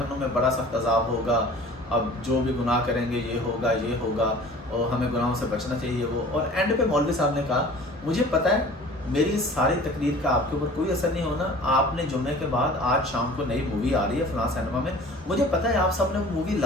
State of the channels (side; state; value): both; normal; correlation 0.45